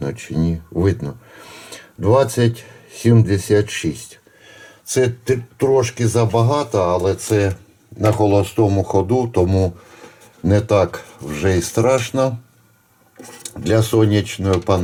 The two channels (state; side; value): identical; both; correlation 1.00